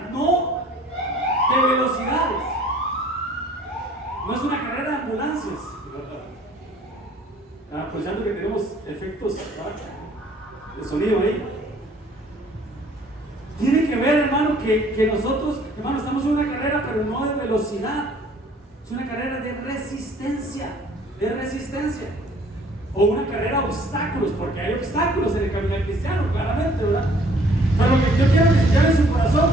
no de velocidades, no es una carrera de ambulancias. Aprovechando que tenemos efectos, ¿verdad?, de sonido ahí. Tiene que ver, hermano, que nosotros Hermano, estamos en una carrera, pero no de velocidad. Es una carrera de resistencia. De resistencia. O una carrera de obstáculos, porque hay obstáculos en el camino cristiano, claramente, ¿verdad? Pero lo que yo quiero que se lleve en su corazón,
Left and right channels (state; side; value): normal; both; correlation 0.56